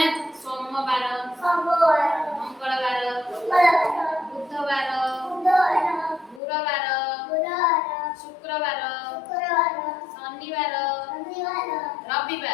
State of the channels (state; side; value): drops out; right; at 6.4 s